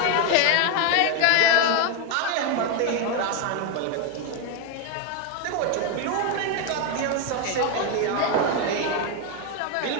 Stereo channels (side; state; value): both; different; correlation 0.01